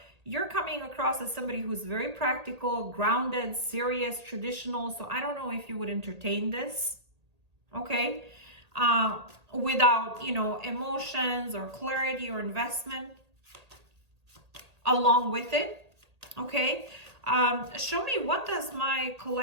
you're coming across as somebody who's very practical, grounded, serious, traditional. So I don't know if you would entertain this, okay? Without, you know, emotions or clarity or investment along with it, okay? Show me, what does my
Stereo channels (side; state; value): left; late; 1.8 ms